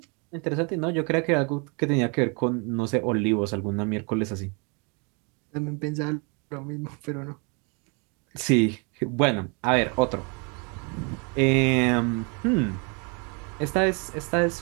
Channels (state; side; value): quieter; left; 33.8 dB